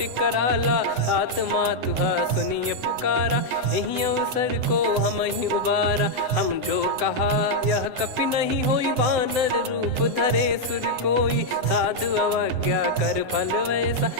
कराला सात मातुहा सुनिय पुकारा यही अवसर को हम ही उबारा हम जो कहा यह कपि नहीं होई बानर रूप धरे सुर कोई साधु अवज्ञा कर फल वैसा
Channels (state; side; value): late; left; 7.7 ms